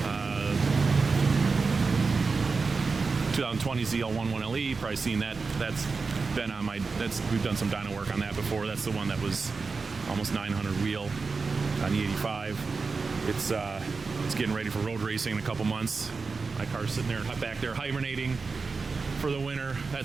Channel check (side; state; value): left; quieter; 4.5 dB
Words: 2020 ZL1 1LE. Probably seen that. That's been on my. We've done some dyno work on that before. That's the one that was almost 900 wheel on the 85. It's getting ready for road racing in a couple months. My car's sitting there back there hibernating for the winter.